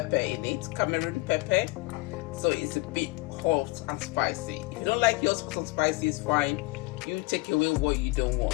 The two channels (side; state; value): right; quieter; 23.0 dB